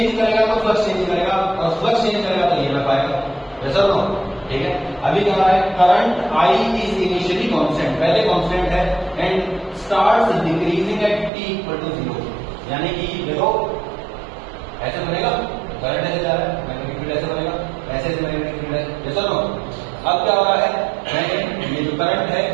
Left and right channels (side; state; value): left; drops out; at 11.3 s